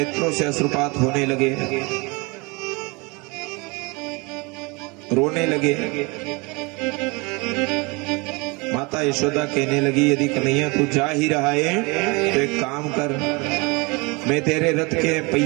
से अश्रुपात होने लगे, रोने लगे। माता यशोदा कहने लगी यदि कन्हैया तू जा ही रहा है तो एक काम कर, मैं तेरे रथ के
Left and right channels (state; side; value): quieter; left; 27.4 dB